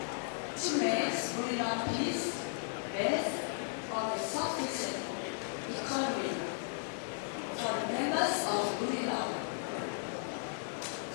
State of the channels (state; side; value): silent; right; digital silence